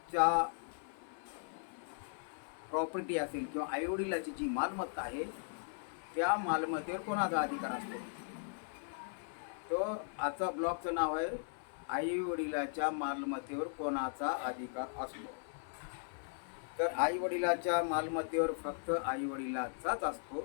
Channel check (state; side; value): silent; right; 52 dB below the other